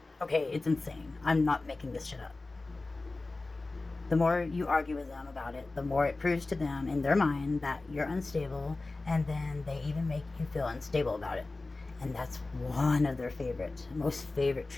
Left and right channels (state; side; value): quieter; right; 3.3 dB